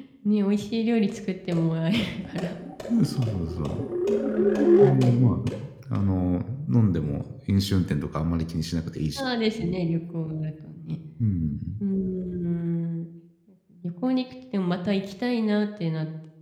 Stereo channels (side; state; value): both; identical; correlation 1.00